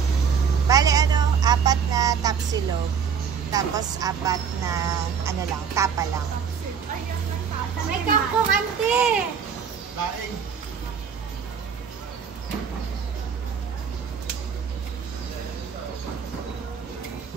Bale, ano, 4 na tapsilog. Tapos 4 na, ano lang, tapa lang. May kangkong, ante! Laing.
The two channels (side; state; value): left; quieter; 6.8 dB